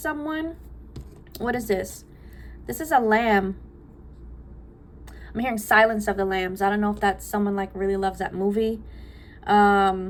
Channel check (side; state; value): both; identical; correlation 1.00